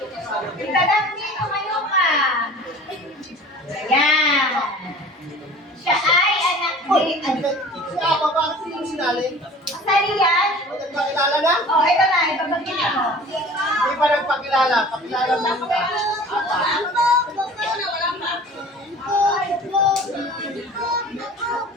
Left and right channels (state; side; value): normal; both; correlation 0.44